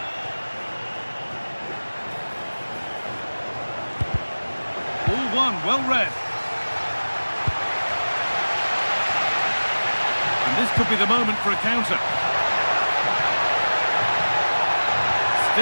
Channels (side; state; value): both; inverted; correlation -1.00